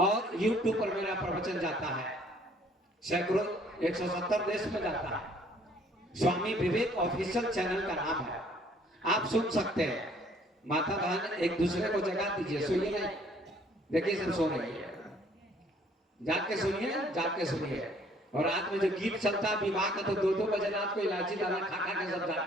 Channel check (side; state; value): both; normal; correlation 0.60